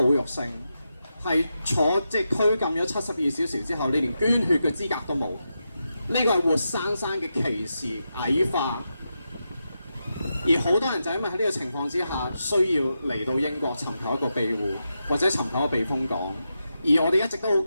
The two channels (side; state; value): both; inverted; correlation -0.87